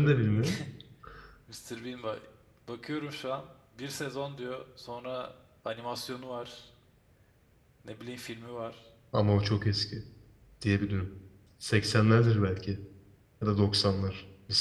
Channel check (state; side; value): identical; both; correlation 1.00